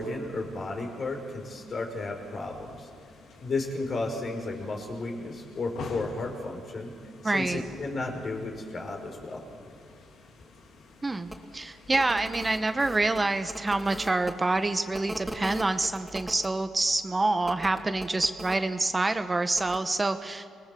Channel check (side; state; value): both; normal; correlation 0.94